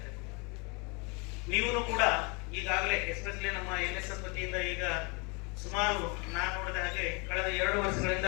ಹೇಳ್ತಾರೆ. ನೀವು ಕೂಡ ಈಗಾಗಲೇ ಎಸ್ಪೆಷಲಿ ನಮ್ಮ NSS ವತಿಯಿಂದ ಈಗ ಸುಮಾರು ನಾನು ನೋಡಿದ ಹಾಗೆ ಕಳೆದ 2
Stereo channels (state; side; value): quieter; right; 31.2 dB